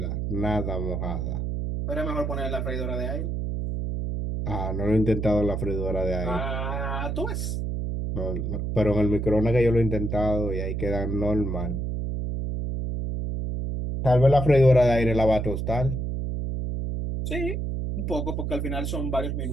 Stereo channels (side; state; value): right; noise; hum, 2 dB below the sound